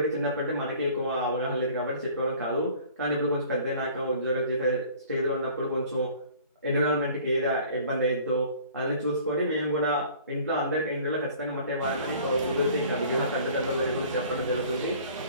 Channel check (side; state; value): both; inverted; correlation -0.50